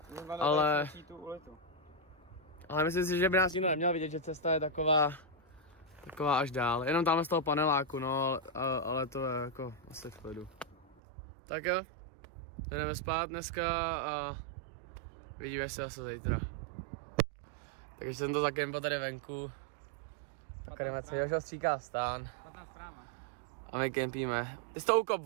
Ale myslím si, že by nás nikdo neměl vidět, že cesta je taková až dál. Jenom tam z toho paneláku, no, ale to je jako asi v klidu. Tak jo, jdeme spát dneska a vidíme se zase zítra. Takže jsem to zakempa tady venku. Tak jdeme si, Jožo stříká stán. A my kempíme. Ty jsi to ukop,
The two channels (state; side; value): drops out; left; at 11.0 s